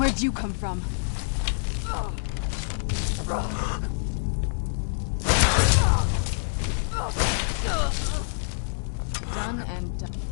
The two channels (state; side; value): silent; right; digital silence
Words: you come from? Done and done.